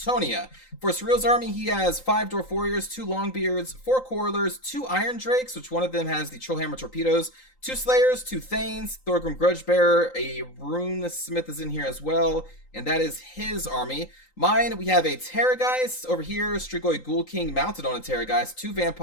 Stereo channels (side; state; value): right; late; 3.9 ms